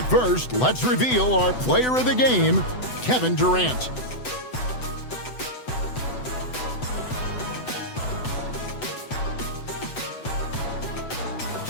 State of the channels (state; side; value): late; right; 8.0 ms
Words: first, let's reveal our player of the game, Kevin Durant.